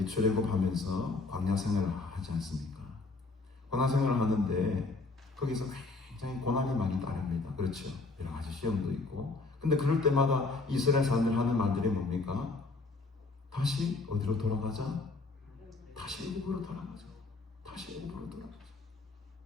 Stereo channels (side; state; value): right; quieter; 3.6 dB